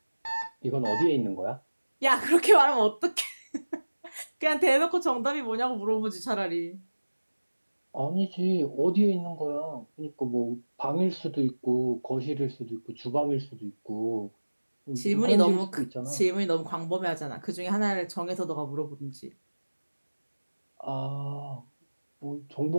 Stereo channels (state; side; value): inverted; both; correlation -1.00